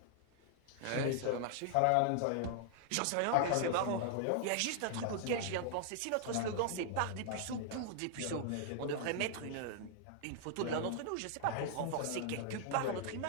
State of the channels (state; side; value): different; both; correlation -0.01